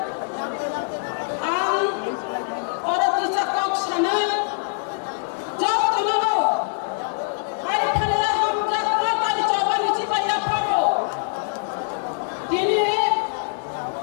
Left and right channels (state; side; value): silent; right; digital silence